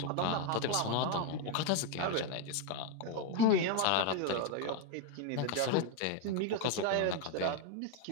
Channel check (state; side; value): different; both; correlation 0.01